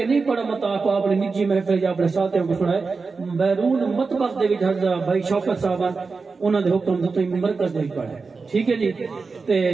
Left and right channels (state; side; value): quieter; left; 4.5 dB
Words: نہیں پڑھا مطلب کو اپنے نجی محفل یا اپنے ساتھیوں کو سنائے بیرون مطبخ دے وچ حضرت بھائی شوکت صاحب انہوں نے حکم تو مرکز دے پڑھا ہے ٹھیک ہے جی تے